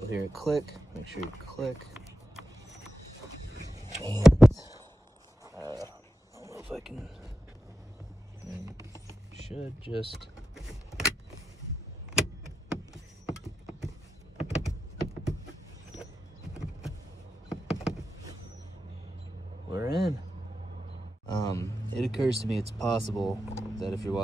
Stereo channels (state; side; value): normal; both; correlation 0.90